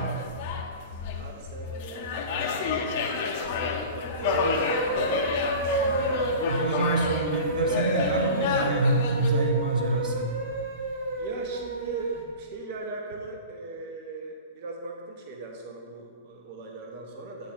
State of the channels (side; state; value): both; inverted; correlation -0.35